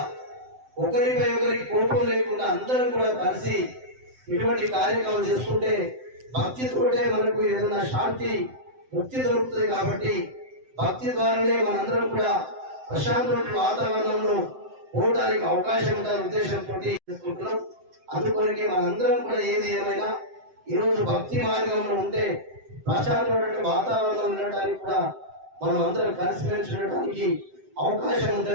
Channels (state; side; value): late; left; 7.8 ms